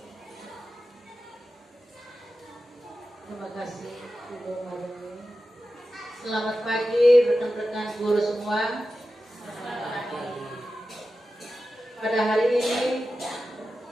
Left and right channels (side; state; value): both; normal; correlation 0.92